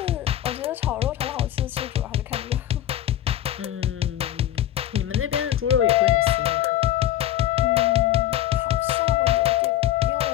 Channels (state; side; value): quieter; right; 12.5 dB